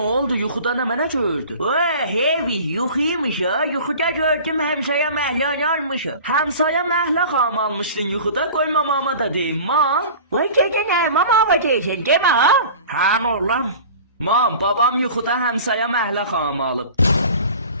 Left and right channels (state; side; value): inverted; both; correlation -0.41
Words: Yuxuda ne mene gördü? Vay hevi yuxuymuş ha. Yuxuda gördüm hemşaya məhlan almışım. Həmsaya məhlə xam almışdın yuxuda, qoy mamama da deyim, mam. Vay dedin ha mama deyirsən demə ha. Həm oğlan. Mam, babam yuxuda həmsaya məhlə xam alıb.